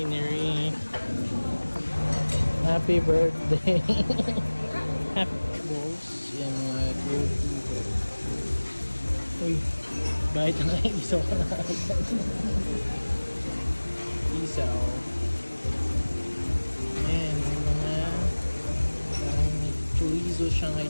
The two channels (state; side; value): inverted; both; correlation -1.00